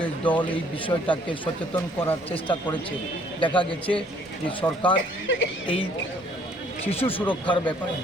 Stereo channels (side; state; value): left; noise; rumble, 28 dB below the sound